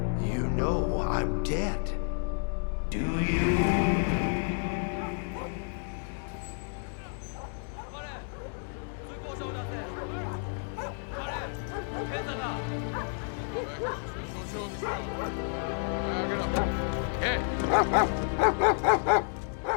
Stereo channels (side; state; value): right; silent; 56 dB below the other